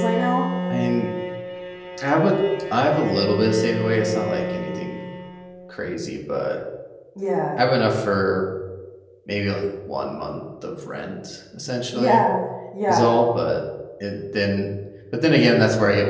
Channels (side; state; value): both; identical; correlation 1.00